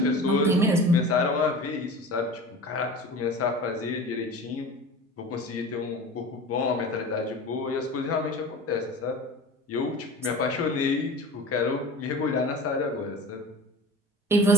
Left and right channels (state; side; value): normal; both; correlation 0.36